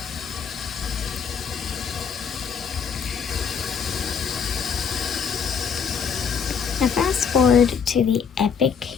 Now fast forward to the epic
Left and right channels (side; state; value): right; quieter; 6.7 dB